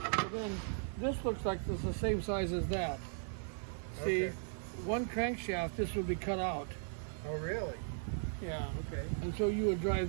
So then this looks like it's the same size as that. See, one crankshaft, this would be cut out. Oh, really? Yeah. Okay. And so you would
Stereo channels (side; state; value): left; silent; 53 dB below the other